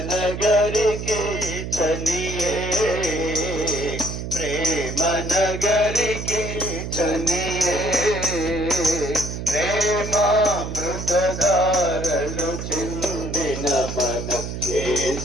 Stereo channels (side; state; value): right; noise; hum, 6 dB below the sound